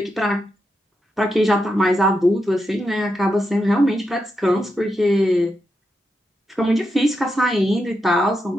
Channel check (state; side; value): normal; both; correlation 0.85